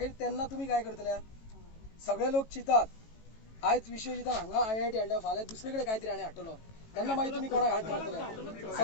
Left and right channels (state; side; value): late; right; 18 ms